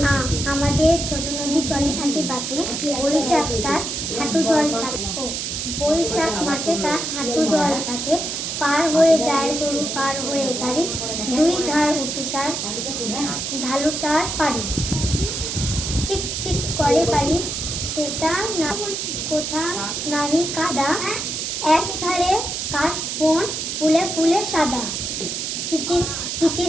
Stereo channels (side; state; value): right; noise; hiss, 3 dB below the sound